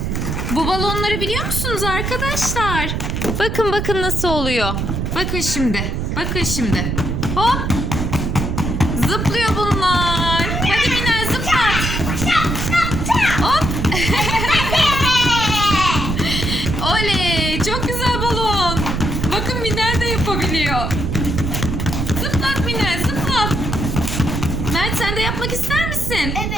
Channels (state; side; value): noise; right; rumble, 2 dB below the sound